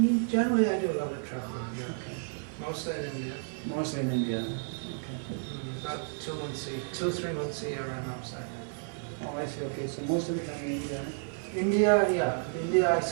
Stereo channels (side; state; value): left; silent; digital silence